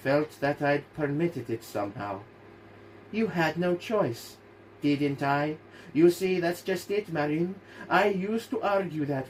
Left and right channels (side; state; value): both; identical; correlation 1.00